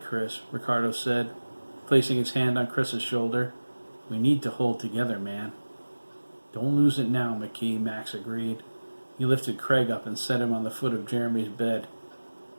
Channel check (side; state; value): both; inverted; correlation -1.00